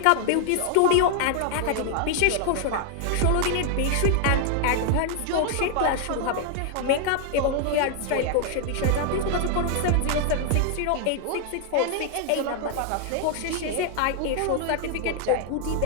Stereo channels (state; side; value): different; both; correlation 0.00